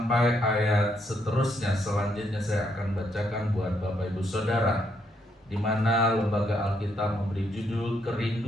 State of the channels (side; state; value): both; normal; correlation 0.75